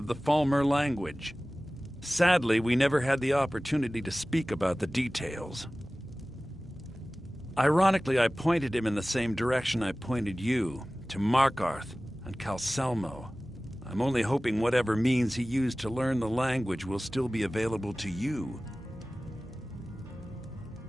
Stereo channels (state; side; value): normal; both; correlation 0.97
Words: the Falmer language. Sadly, we never had the opportunity to speak about the details. Ironically, I pointed him in the same direction I pointed you, to Markarth and Calselmo. I'm only hoping whatever means he used to learn the language will still be available to you.